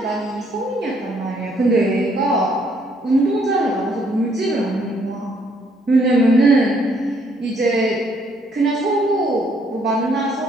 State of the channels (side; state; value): both; normal; correlation 0.67